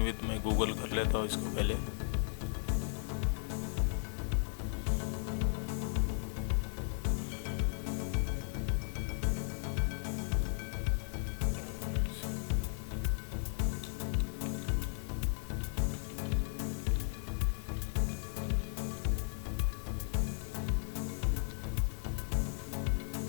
विथ मैं गूगल कर लेता हूँ इसको पहले।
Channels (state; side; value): silent; right; 54 dB below the other